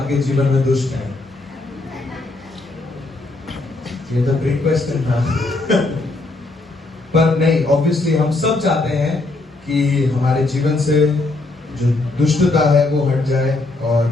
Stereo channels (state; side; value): quieter; right; 3.1 dB